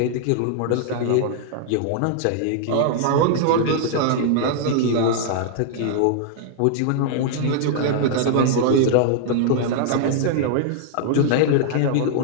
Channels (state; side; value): different; both; correlation -0.01